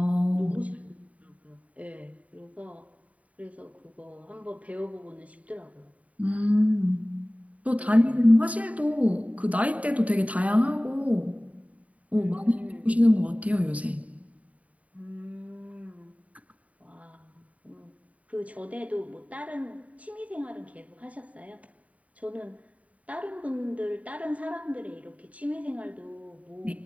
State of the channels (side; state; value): left; late; 0.068 ms